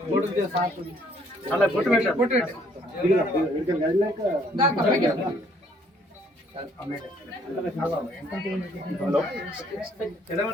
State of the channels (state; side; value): normal; both; correlation 0.64